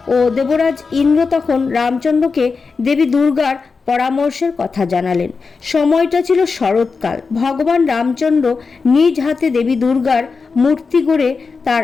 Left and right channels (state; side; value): quieter; right; 4.7 dB